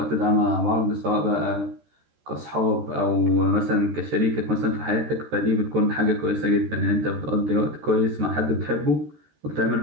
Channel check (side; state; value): left; late; 13 ms